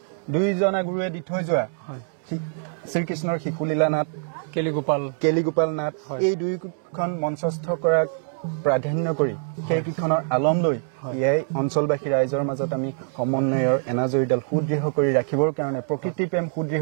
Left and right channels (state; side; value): silent; left; digital silence